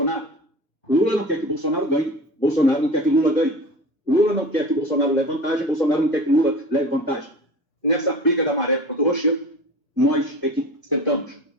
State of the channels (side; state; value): both; normal; correlation 0.36